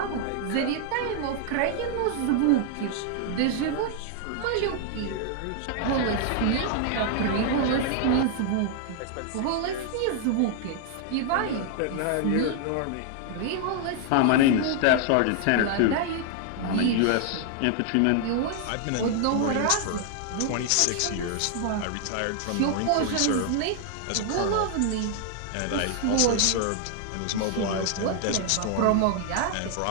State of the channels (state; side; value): different; both; correlation 0.00